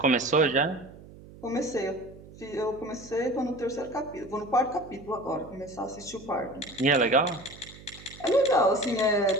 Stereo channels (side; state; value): right; noise; hum, 19 dB below the sound